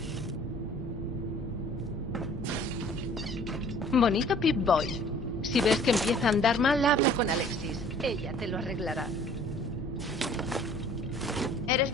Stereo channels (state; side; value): normal; both; correlation 0.52